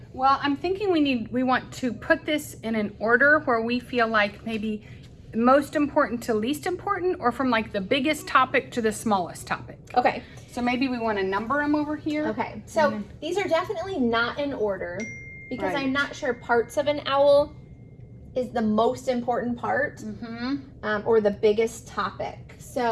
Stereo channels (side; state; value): both; identical; correlation 1.00